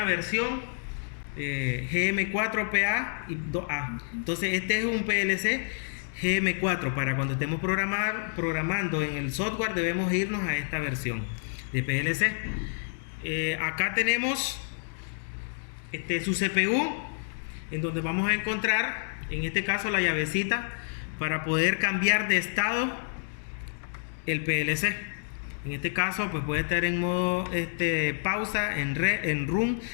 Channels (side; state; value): right; silent; digital silence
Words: versión GM4PA y 2A. Entonces este es un PLC GM4. Para cuando estemos programando en el software debemos irnos a esta versión de PLC. Acá tenemos su CPU, en donde vamos a encontrar, en este caso, la llavecita para poder cambiar de estado el PLC. En este caso, pues puede estar en modo pausa, en run,